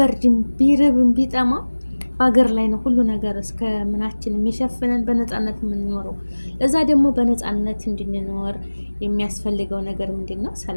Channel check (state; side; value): inverted; both; correlation -1.00